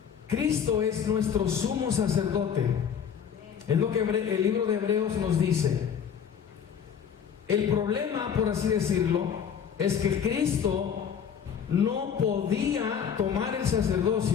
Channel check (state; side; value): quieter; right; 7.8 dB